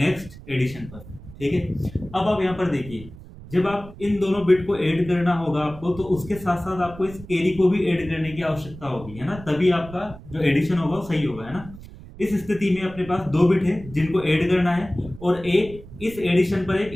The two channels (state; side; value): noise; right; rumble, 17 dB below the sound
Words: एडिशन पर। ठीक है। अब आप यहाँ पर देखिए, जब आप इन दोनों बिट को ऐड करना होगा आपको, तो उसके साथ साथ आपको इस कैरी को भी ऐड करने की आवश्यकता होगी, है ना, तभी आपका जो एडिशन होगा वो सही होगा, है ना। इस स्थिति में अपने पास 2 बिट है जिनको ऐड करना है, और एक इस एडिशन पर एक